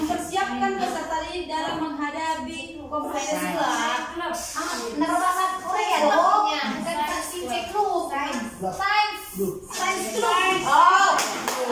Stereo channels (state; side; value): identical; both; correlation 1.00